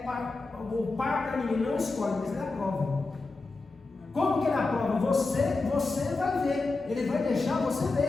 o par para ninguém, não escolhe, mas Ele aprova. Como que Ele aprova? Você vai ver, Ele vai deixar você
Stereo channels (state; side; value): quieter; right; 3.6 dB